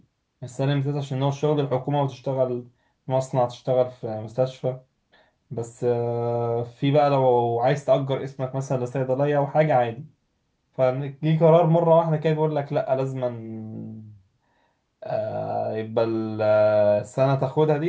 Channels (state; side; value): identical; both; correlation 1.00